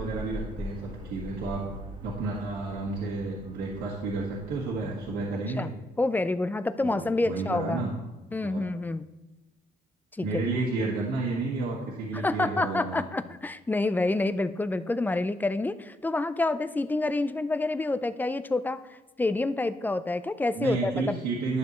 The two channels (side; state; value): both; normal; correlation 0.76